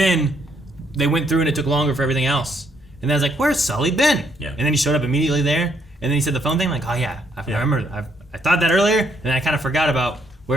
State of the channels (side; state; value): both; normal; correlation 0.72